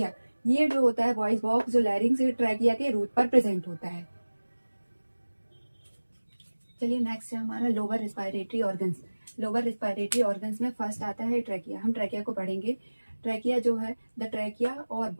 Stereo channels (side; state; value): both; inverted; correlation -1.00